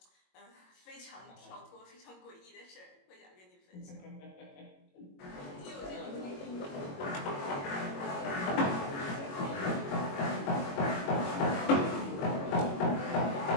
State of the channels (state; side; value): late; right; 22 ms